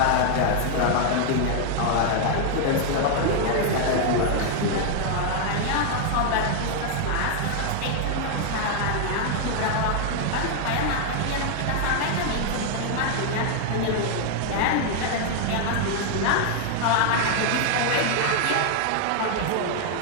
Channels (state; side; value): different; both; correlation 0.00